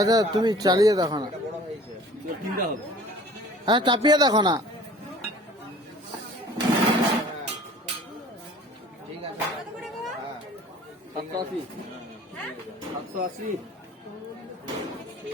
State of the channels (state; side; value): normal; both; correlation 0.48